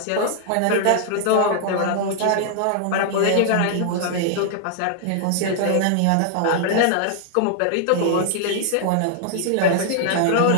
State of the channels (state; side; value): different; both; correlation -0.01